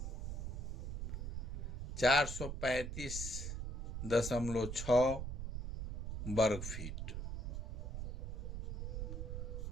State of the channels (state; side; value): noise; right; rumble, 4 dB below the sound